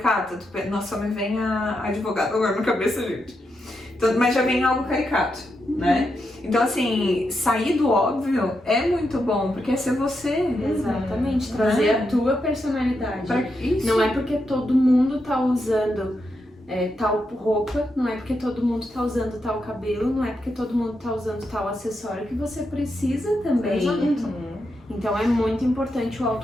Nossa, me vem a advogada agora na cabeça, gente. Então, mas já vem algo caricato, né? Então, assim, sair do óbvio é muito bom, porque é ser você. Exatamente, trazer a tua personalidade. Isso. Não é porque todo mundo tá usando tal roupa, não é porque todo mundo tá usando tal cabelo, não é porque todo mundo tá usando tal acessório que você precisa também. Então é muito importante o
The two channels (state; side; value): normal; both; correlation 0.84